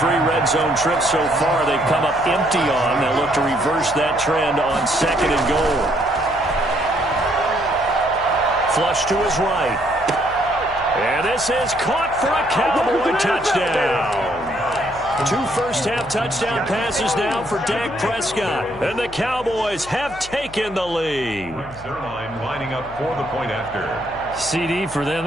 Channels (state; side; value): noise; left; hum, 18 dB below the sound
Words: red zone trips so far they've come up empty on. They'll look to reverse that trend on 2nd and goal. Flush to his right. And this is caught for a Cowboy touchdown. 2 first-half touchdown passes now for Dak Prescott. And the Cowboys have taken the lead. Zerline lining up for the point after. CD, for them,